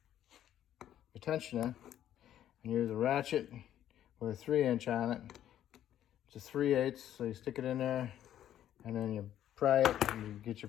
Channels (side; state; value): right; quieter; 11.3 dB